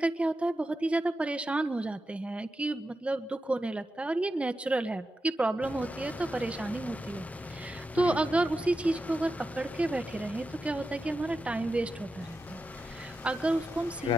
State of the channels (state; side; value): normal; both; correlation 0.89